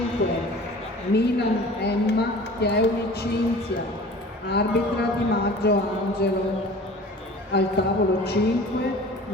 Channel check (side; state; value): both; normal; correlation 0.42